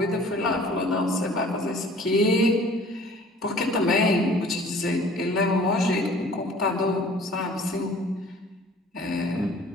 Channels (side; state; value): both; normal; correlation 0.50